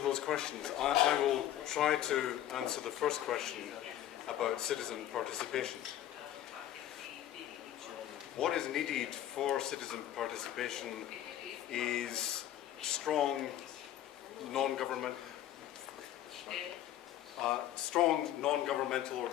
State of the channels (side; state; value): right; quieter; 12.3 dB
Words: those questions. I will try to answer the first question about citizen participation. What is needed for citizen participation is strong non-governmental